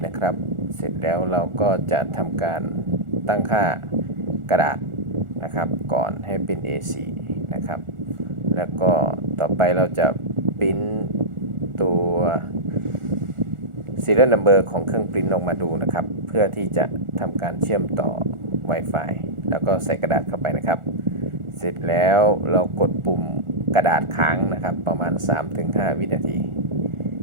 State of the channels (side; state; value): left; late; 1.4 ms